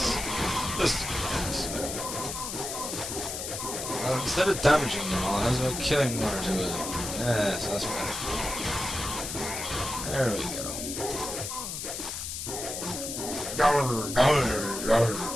Just well, instead of damaging them all, how's about killing one or two of them? Yes, that's better. There we go.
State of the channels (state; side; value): noise; left; hiss, 5 dB below the sound